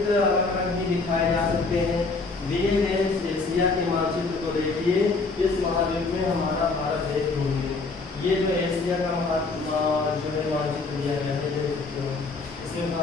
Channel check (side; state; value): right; quieter; 3.9 dB